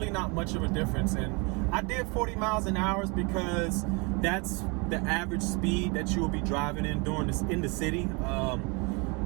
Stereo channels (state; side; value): quieter; left; 30.2 dB